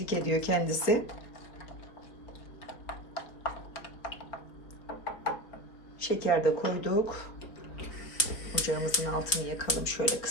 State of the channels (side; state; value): right; late; 4.0 ms